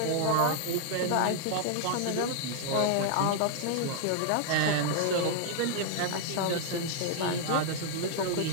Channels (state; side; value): different; both; correlation -0.01